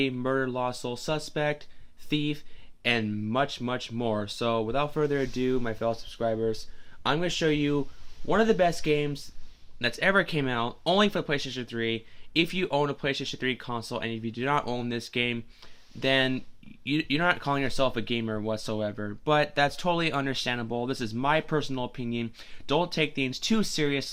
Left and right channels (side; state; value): both; identical; correlation 1.00